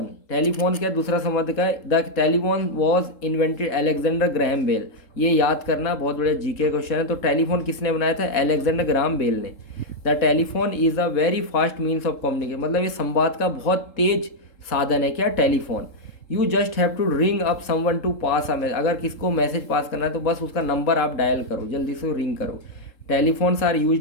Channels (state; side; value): late; right; 3.8 ms